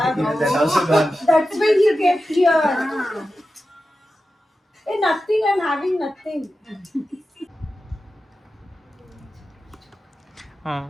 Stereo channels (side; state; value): both; normal; correlation 0.92